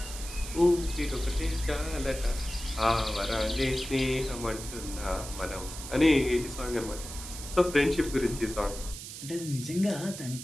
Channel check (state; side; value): noise; right; hiss, 11 dB below the sound